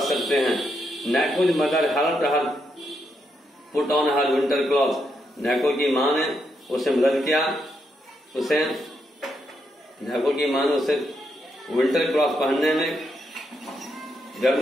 सकते हैं। Naiko's mother helped her put on her winter cloth. Naiko की माँ ने उसे मदद किया, नैको की माँ ने उसे विंटर क्लॉथ पहनने में,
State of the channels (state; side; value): normal; both; correlation 0.80